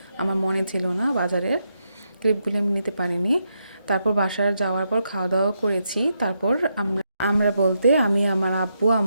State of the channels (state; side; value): inverted; both; correlation -0.82